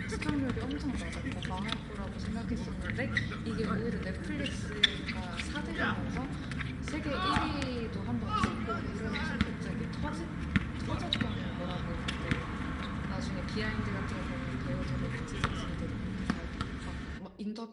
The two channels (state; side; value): identical; both; correlation 1.00